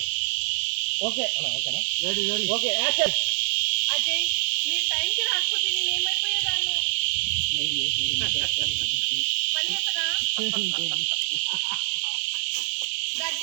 ఓకే ఓకేనా రెడీ ఓకే యాక్షన్. అజయ్ మీరు టైంకి రాకపోతే నేను ఏమైపోయేదాన్ని మళ్ళీ చెప్పనా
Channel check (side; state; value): left; silent; digital silence